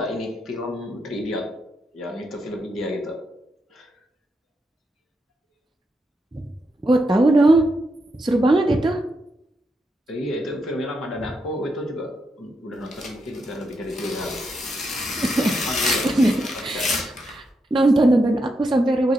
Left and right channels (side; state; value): both; normal; correlation 0.83